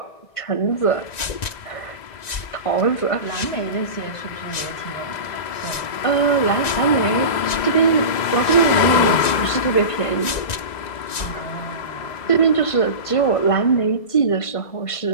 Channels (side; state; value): right; late; 1.9 ms